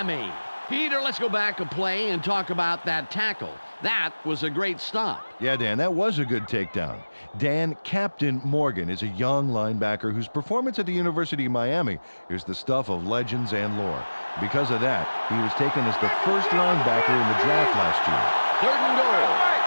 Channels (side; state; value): both; inverted; correlation -1.00